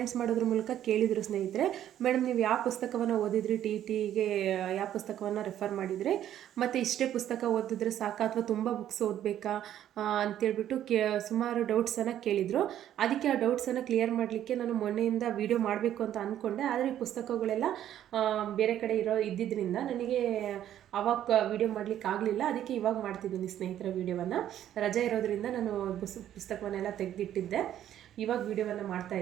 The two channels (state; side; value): quieter; left; 11.3 dB